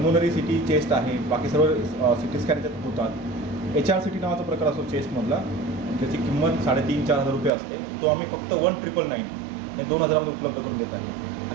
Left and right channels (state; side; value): drops out; left; at 7.5 s